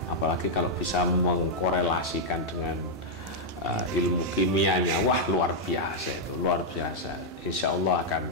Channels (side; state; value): both; normal; correlation -0.04